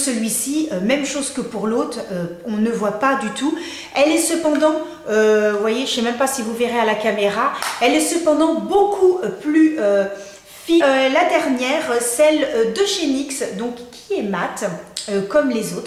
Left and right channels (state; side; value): identical; both; correlation 1.00